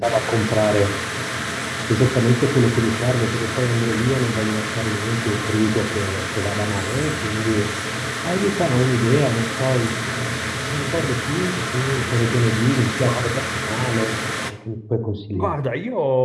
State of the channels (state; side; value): identical; both; correlation 1.00